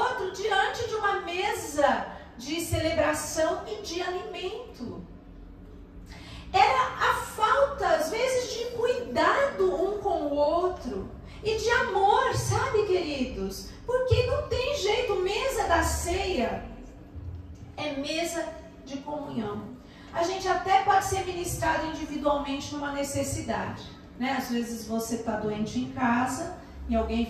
diante de uma mesa de celebração e de alimento. Era a outro. E de amor, sabe, queridos? Porque não tem jeito, mesa da ceia é mesa de comunhão. A gente até pode ser ministrado individualmente numa necessidade, né? Às vezes você está doente em casa e alguém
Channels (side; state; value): both; identical; correlation 1.00